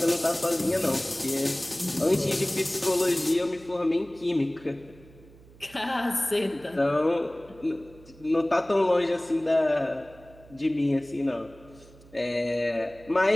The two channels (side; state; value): right; noise; hum, 23 dB below the sound